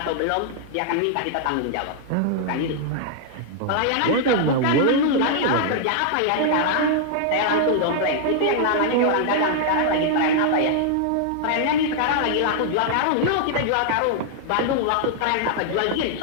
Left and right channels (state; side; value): different; both; correlation -0.01